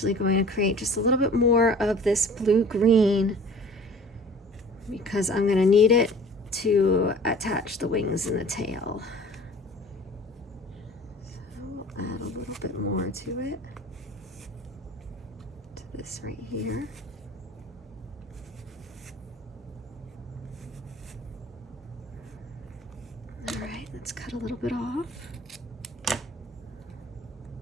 going to create just a little bit more of this blue-green because I'm going to need it to attach the wings and the tail. So I'll add a little bit more to it, to this right here. All right, let's cut a little bit off.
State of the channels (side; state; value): both; normal; correlation 0.46